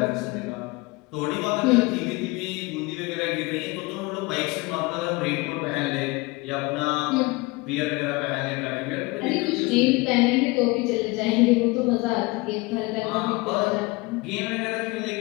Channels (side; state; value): right; quieter; 24.1 dB